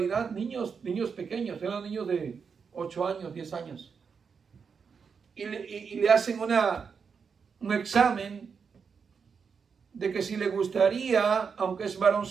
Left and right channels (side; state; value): left; quieter; 6.0 dB